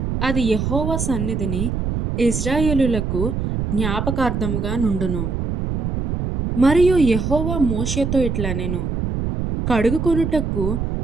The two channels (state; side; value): noise; right; rumble, 1 dB below the sound